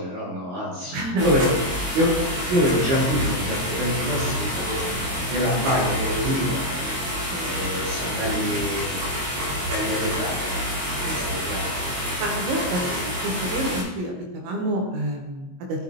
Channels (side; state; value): left; late; 22 ms